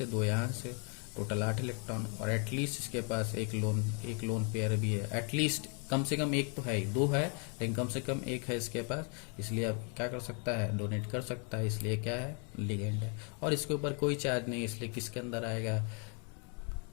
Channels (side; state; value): right; quieter; 38.2 dB